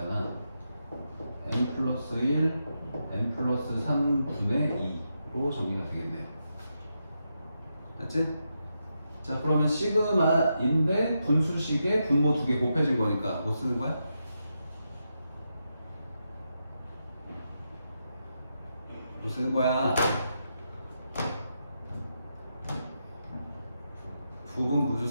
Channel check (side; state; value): both; inverted; correlation -0.85